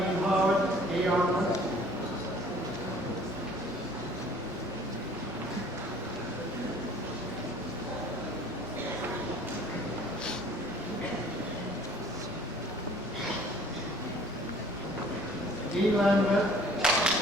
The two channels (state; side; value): normal; both; correlation 0.52